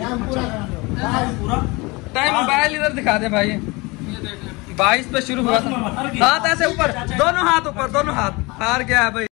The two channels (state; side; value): quieter; right; 25.0 dB